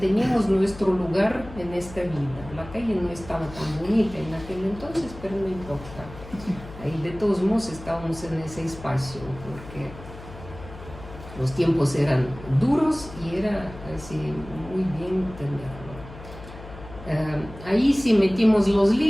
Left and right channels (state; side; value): noise; left; hum, 15 dB below the sound